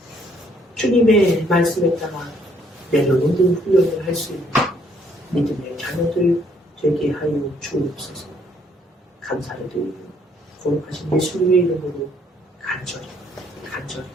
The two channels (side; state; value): both; normal; correlation 0.67